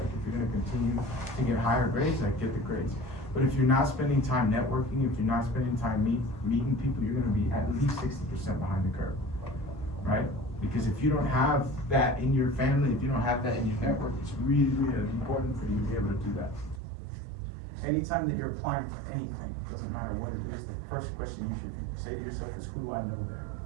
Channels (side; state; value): left; drops out; at 16.8 s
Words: if you're gonna continue to get higher grades, like get the grades. But if you're not spending time networking, if you're not spending time meeting people, you're gonna be at least 60% behind the curve, right? Because if you don't have that in your family, if you don't have that in your network, it's really, really important for you to be able to do that. Anytime that you're applying for anything, it doesn't matter what it is, the first question you should say to yourself is, who do I know there?